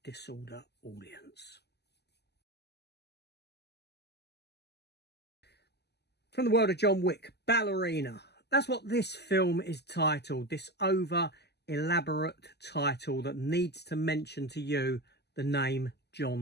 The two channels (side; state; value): right; late; 0.49 ms